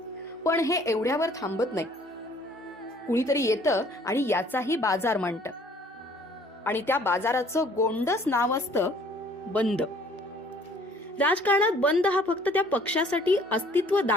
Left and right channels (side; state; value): both; normal; correlation 0.57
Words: पण हे एवढ्यावर थांबत नाही. कुणीतरी येतं आणि याचाही बाजार मांडतं आणि त्या बाजाराचं गोंडस नाव असतं बंद. राजकारणात बंद हा फक्त त्या पक्षासाठी अस्तित्व